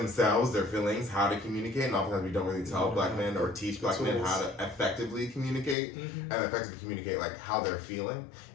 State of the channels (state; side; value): drops out; right; at 5.8 s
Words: their feelings, how to communicate, and oftentimes we don't really tell black men or teach black men how to effectively communicate and effectively communicate like how they're feeling,